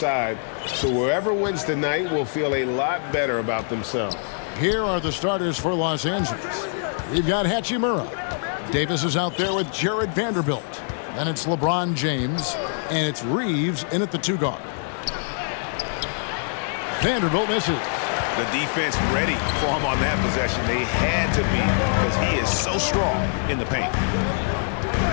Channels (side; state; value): right; silent; digital silence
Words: So whoever wins tonight will feel a lot better about themselves. Here are the starters for Los Angeles. We've got Hachimura. Davis is out there with Jared Vanderbilt. Then it's LeBron James, and it's Reeves in at the 2 guard. Vanderbilt misses. The defense ready for him on that possession. They had to be, because he is so strong in the paint.